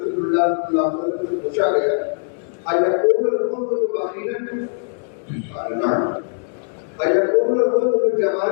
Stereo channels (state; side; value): silent; right; digital silence